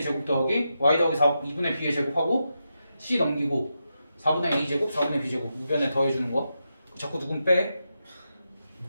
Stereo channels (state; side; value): inverted; both; correlation -0.86